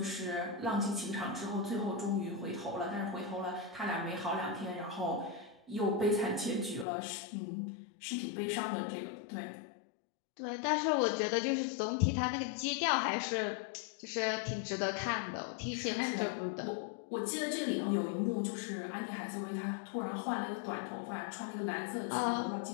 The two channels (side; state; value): right; drops out; at 6.9 s